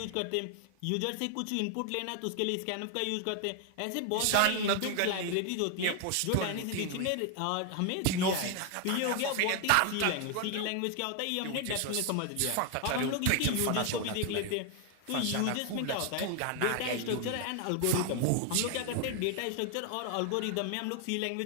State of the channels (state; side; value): different; both; correlation 0.00